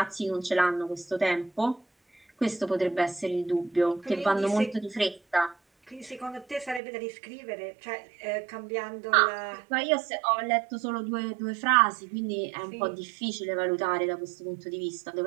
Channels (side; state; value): left; drops out; at 6.8 s